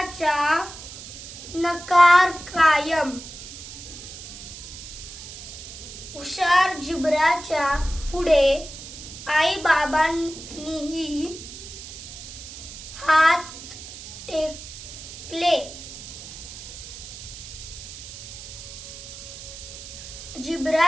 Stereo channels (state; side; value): noise; right; hiss, 13 dB below the sound